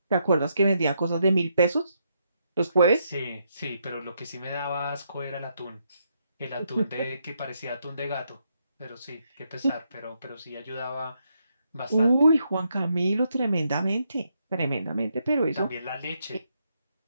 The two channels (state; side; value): inverted; both; correlation -0.78